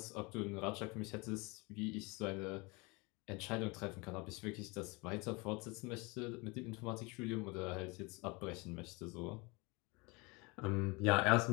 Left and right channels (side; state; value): right; quieter; 27.3 dB